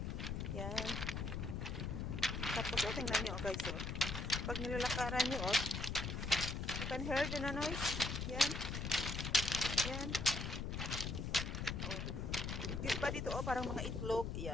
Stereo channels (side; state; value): left; noise; rumble, 3 dB below the sound